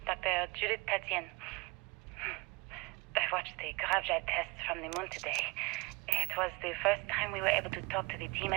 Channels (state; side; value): quieter; left; 26.3 dB